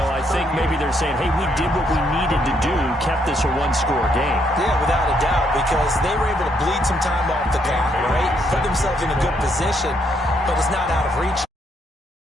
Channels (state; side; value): normal; both; correlation 0.73